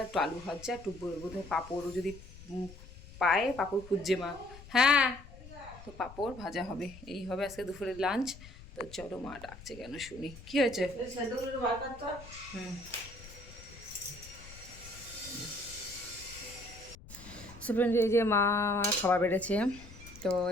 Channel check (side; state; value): left; noise; rumble, 17 dB below the sound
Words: একটু আলু ভাজা, একটু বোধহয় পাঁপড়ও যদি পায়, পাঁপড় খুঁজছে মা। হ্যাঁ, তো পাঁপড় ভাজা হবে, এই হবে আজকে দুপুরের লাঞ্চ। তো চলো, মা ডাকছে কেন শুনি, কি হয়েছে? ফ্রেন্ড, এই যে মা খাবার বেড়েছে। তো